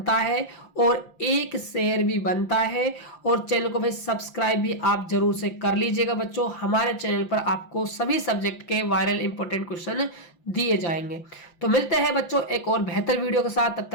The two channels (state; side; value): late; right; 5.8 ms